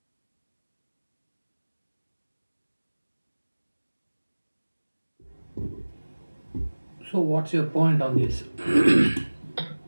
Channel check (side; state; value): both; inverted; correlation -1.00